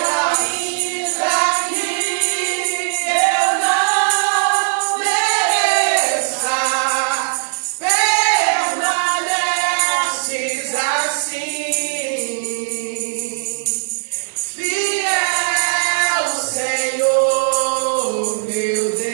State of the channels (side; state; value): left; silent; digital silence